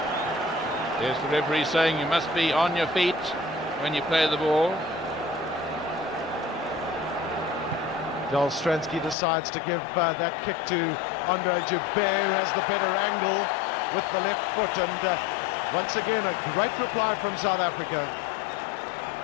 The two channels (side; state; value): right; drops out; at 9.2 s